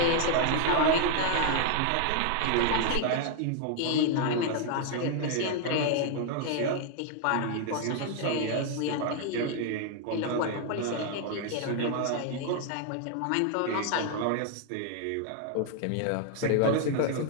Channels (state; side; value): different; both; correlation 0.00